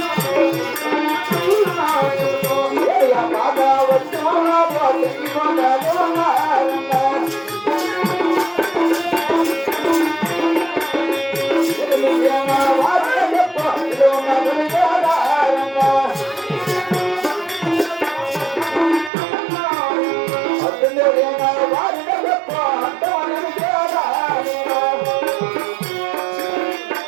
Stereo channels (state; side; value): drops out; left; at 19.1 s